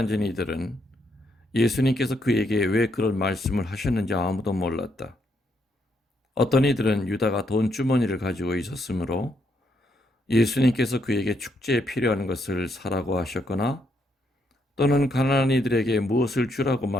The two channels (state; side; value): normal; both; correlation 0.76